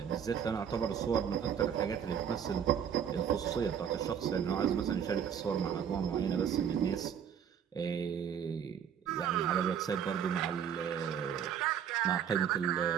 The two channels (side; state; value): left; quieter; 8.3 dB